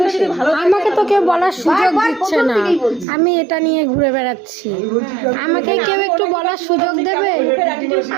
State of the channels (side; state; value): left; drops out; at 3.1 s